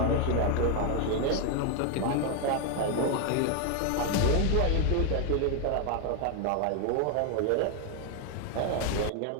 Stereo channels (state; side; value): different; both; correlation 0.01